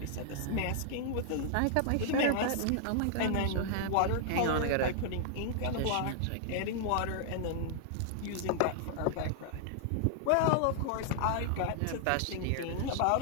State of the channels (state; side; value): different; both; correlation -0.01